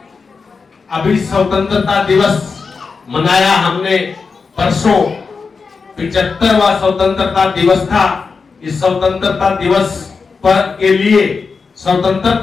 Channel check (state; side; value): quieter; right; 4.9 dB